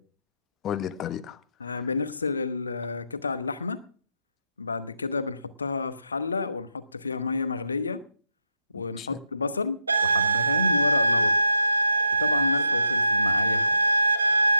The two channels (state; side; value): inverted; both; correlation -0.86